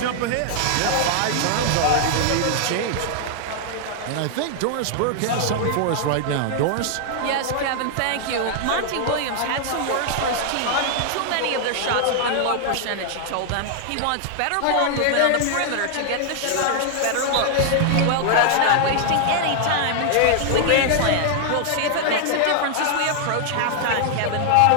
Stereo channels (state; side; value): different; both; correlation -0.01